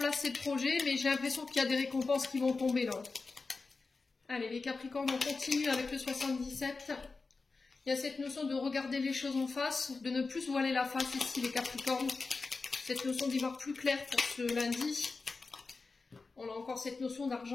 ces projets, mais j'ai l'impression qu'il y a des récompenses qui vont tomber là. Allez, les Capricornes, on continue avec le 77. Il y a cette notion de regarder les choses en face, de ne plus se voiler la face ici, les Capricornes. Cette notion d'y voir plus clair pour ce lundi. On a encore cette notion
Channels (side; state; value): right; quieter; 4.1 dB